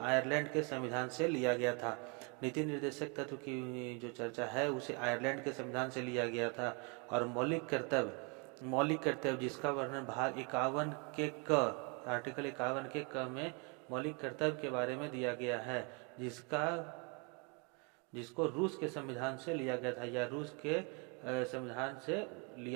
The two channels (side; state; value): left; quieter; 33.6 dB